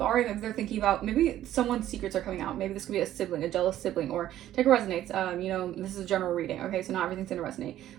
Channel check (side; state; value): left; quieter; 12.7 dB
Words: All right. Maybe they're thinking about maybe someone's secrets are coming out. Maybe this could be a sibling, a jealous sibling, or take a resonates. This is a general reading. Okay. So not everything's going to resonate,